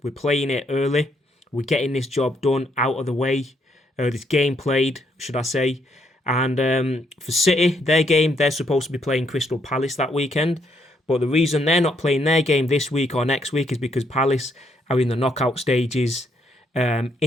we're playing it early. We're getting this job done out of the way. This game played, should I say. And for City, their game, they're supposed to be playing Crystal Palace that weekend. But the reason they're not playing their game this week or next week is because Palace are in the knockout stages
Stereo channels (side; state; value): both; normal; correlation 0.73